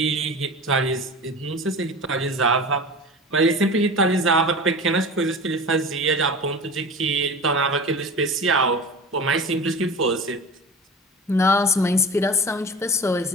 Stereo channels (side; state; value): both; normal; correlation 0.33